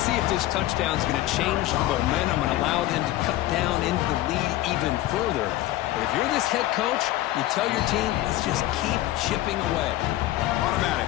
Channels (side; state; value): right; quieter; 15.4 dB